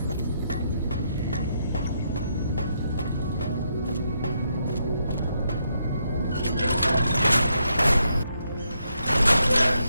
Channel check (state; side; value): inverted; both; correlation -0.78